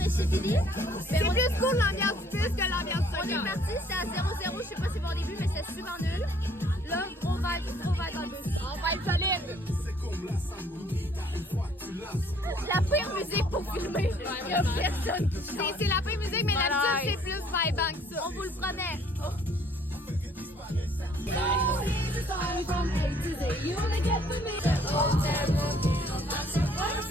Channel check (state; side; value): normal; both; correlation 0.60